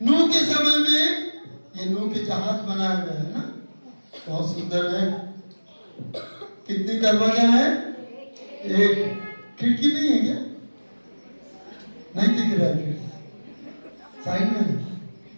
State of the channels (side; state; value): both; inverted; correlation -1.00